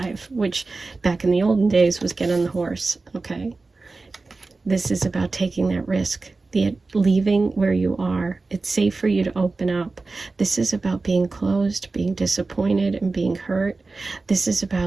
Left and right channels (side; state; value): left; quieter; 3.7 dB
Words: which back in the olden days was get on the horse, okay? This is about taking that risk, leaving where you are. It's safe for you to open up. This is about being closed, being disappointed, and being hurt. This is